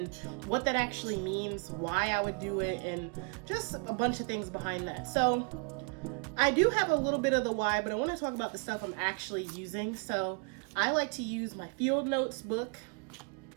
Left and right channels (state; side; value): quieter; left; 35.0 dB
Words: what that actually means, why I would do it, and just a bunch of things behind that. So, I do have a little bit of the why, but I want to talk about the stuff I'm actually using. So, I like to use my field notes book.